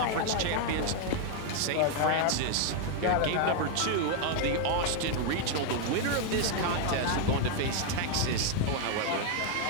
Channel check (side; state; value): both; different; correlation 0.01